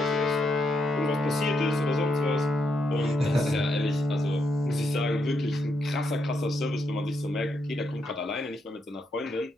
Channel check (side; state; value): both; normal; correlation 0.79